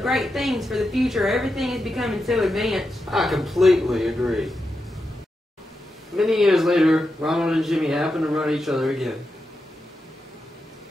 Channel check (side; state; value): both; normal; correlation 0.88